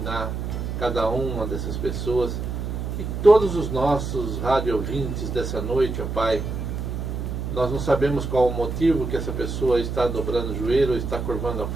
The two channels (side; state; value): right; noise; hum, 4 dB below the sound